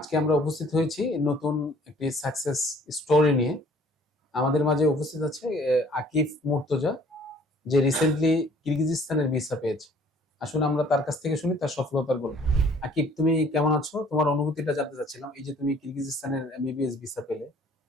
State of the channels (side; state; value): both; normal; correlation 0.56